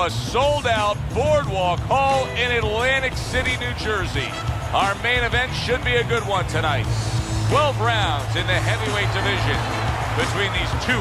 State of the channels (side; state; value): both; identical; correlation 1.00